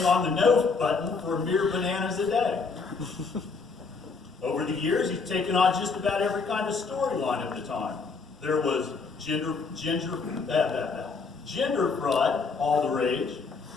on the no button for a mere bananas a day." Over the years, he's taken on just about every kind of storyline of the time. There was gender fraud, all the rage,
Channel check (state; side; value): quieter; right; 4.6 dB